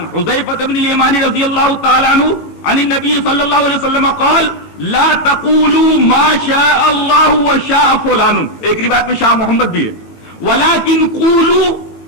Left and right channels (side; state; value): right; late; 19 ms